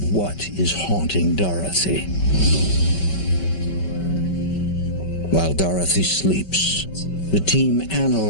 what is haunting Dorothy. While Dorothy sleeps, the team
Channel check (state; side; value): late; right; 5.2 ms